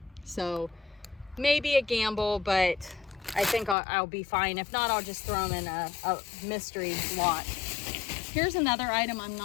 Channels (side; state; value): right; drops out; at 3.8 s